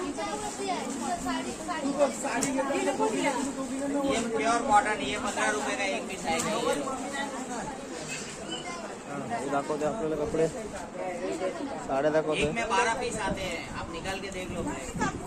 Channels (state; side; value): identical; both; correlation 1.00